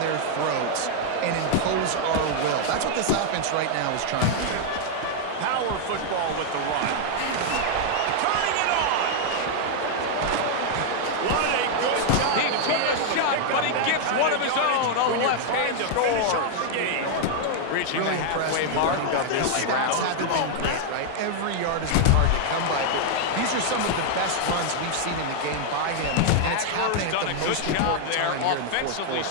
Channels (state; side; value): different; both; correlation 0.00